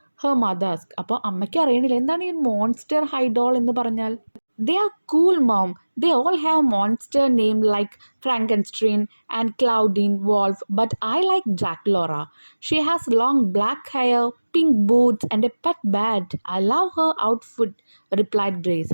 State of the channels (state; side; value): inverted; both; correlation -1.00